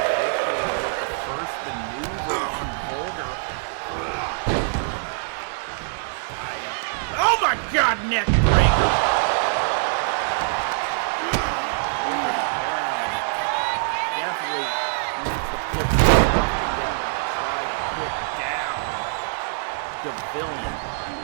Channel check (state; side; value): silent; left; 63 dB below the other